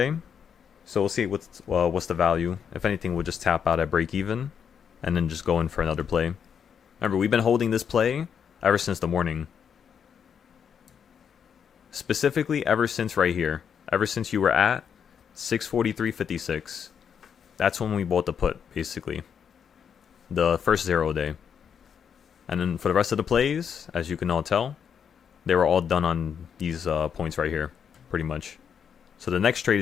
So we'll see what's the value. If anything, we'll just tap out at break even and then just go in for another play. Remember, we've been holding this play ever since the morning. Specifically, ever since right here. Ever since you were at 643.56. That's when we bought the put, basically. The first 0 day. And then for the rest of the plays, as you can all tell, they were all done on these points right here, pretty much. So the next trade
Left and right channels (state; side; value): quieter; right; 7.5 dB